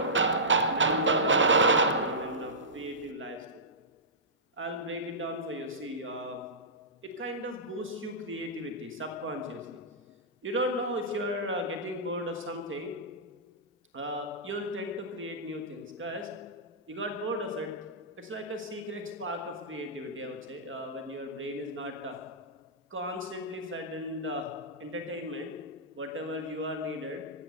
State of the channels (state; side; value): normal; both; correlation -0.17